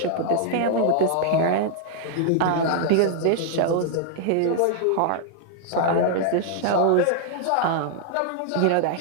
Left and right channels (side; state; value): both; different; correlation -0.01